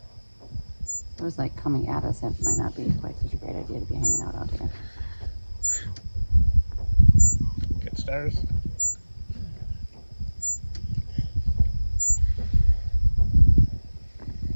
It was like coming at us. It might not be quite such a great idea to be hanging out here. Get stars.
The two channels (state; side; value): inverted; both; correlation -1.00